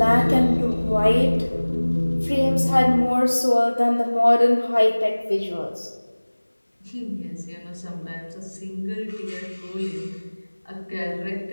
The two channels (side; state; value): both; inverted; correlation -1.00